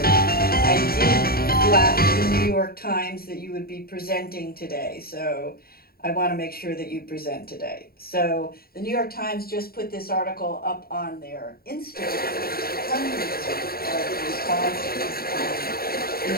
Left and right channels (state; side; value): late; right; 0.44 ms